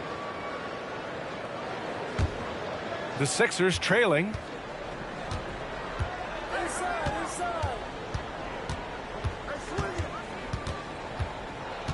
The Sixers trailing.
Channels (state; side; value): identical; both; correlation 1.00